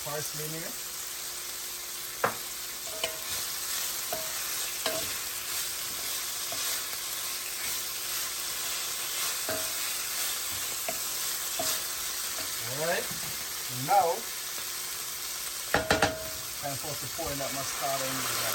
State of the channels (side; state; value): both; identical; correlation 1.00